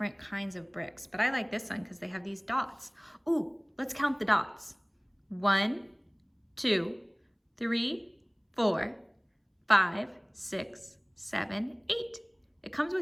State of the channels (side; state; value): both; identical; correlation 1.00